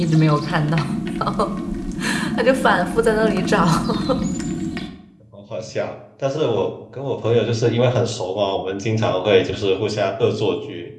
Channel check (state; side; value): identical; both; correlation 1.00